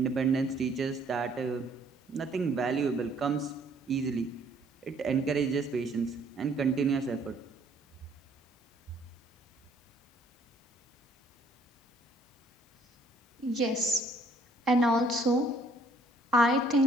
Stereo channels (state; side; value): normal; both; correlation 0.62